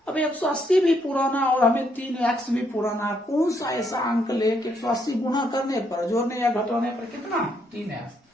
अब 180 भी पुराना और हमें 3x भी पुराना है। कौन सा ऐसा अंक ले कि 180 गुना करने पर, जोड़ने या घटाने पर कितना 3x,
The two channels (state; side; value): normal; both; correlation 0.74